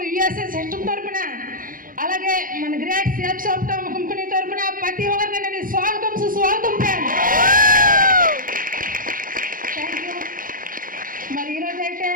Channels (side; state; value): left; late; 0.40 ms